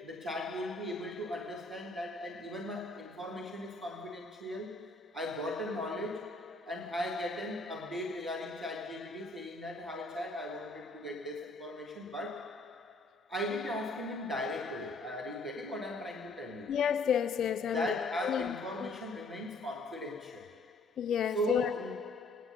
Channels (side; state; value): right; quieter; 3.4 dB